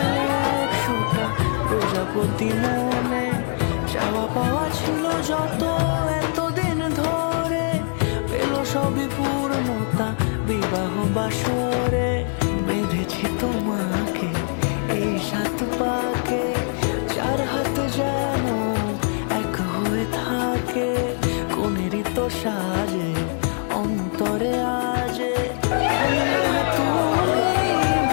একশোটা প্রজাপতি মনে চাওয়া পাওয়া ছিল যত এতদিন ধরে পেল সবই পূর্ণতা বিবাহ বাসরে বেঁধেছি তোমাকে এই সাত পাকে চার হাত যেন এক হয়ে থাকে কোনেরই তো সাজে অন্তরে আজে আনলে তুমি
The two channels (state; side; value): silent; right; 64 dB below the other